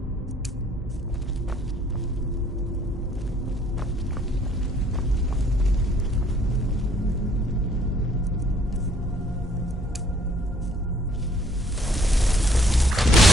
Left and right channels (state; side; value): normal; both; correlation 0.62